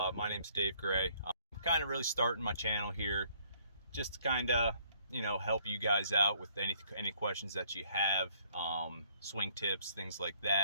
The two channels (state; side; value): inverted; both; correlation -0.63